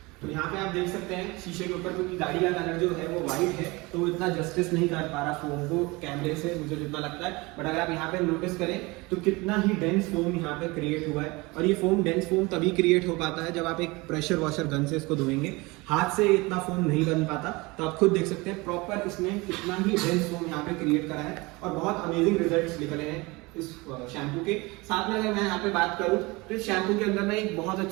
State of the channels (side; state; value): left; quieter; 24.1 dB